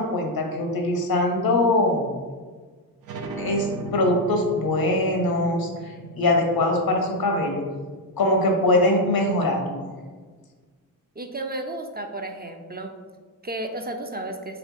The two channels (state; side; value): normal; both; correlation 0.00